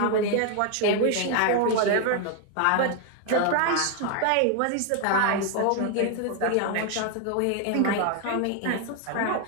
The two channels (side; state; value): both; different; correlation 0.01